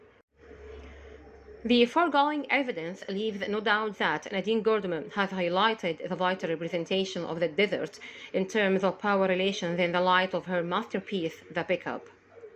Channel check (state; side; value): identical; both; correlation 1.00